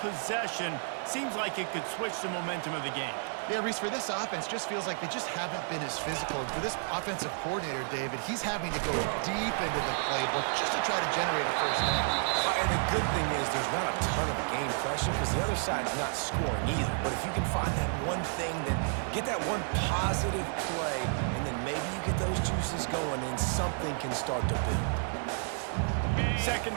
seems like it could switch the momentum of the game. Yeah, Reese, for this offense, just feels like they just haven't been as physical. For this offensive coordinator, David, he's having to go deep into the playbook just to try to generate a first down. And the good thing is there's not a ton of game pressure because the other side's not scoring either. But if you can find that one thing, that get that one positive play, and then maybe you get those juices going and something can start to build. 2nd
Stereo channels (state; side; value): silent; left; 57 dB below the other